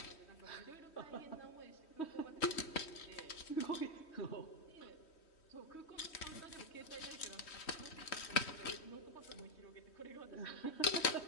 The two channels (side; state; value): right; late; 3.1 ms